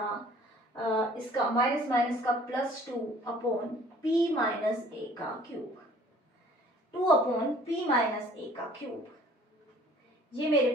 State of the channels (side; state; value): both; normal; correlation 0.53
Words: इसका माइनस माइनस का +2/p माइनस a का क्यूब, 2/p माइनस a का क्यूब, ये मेरे